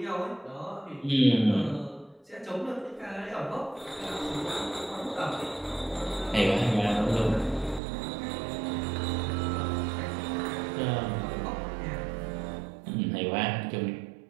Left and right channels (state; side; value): drops out; left; at 7.8 s